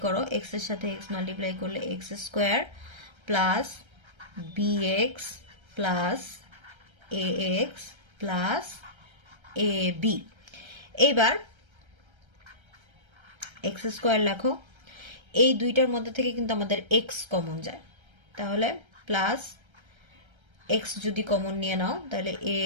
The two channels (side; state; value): left; late; 1.3 ms